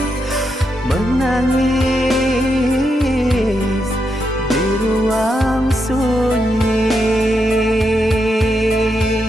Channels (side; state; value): both; normal; correlation 0.83